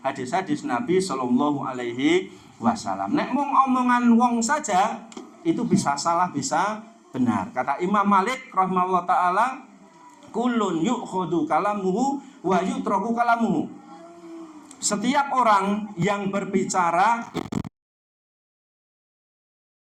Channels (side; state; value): both; identical; correlation 1.00